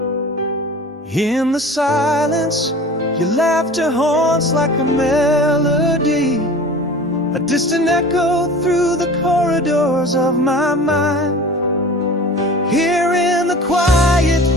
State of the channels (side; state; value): both; normal; correlation 0.39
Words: In the silence, your laughter haunts like a melody, a distant echo through the corridors of my mind. Here in the quiet,